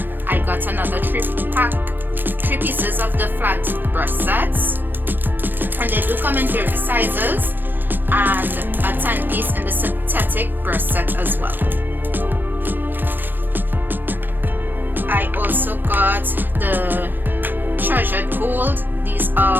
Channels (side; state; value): left; late; 0.093 ms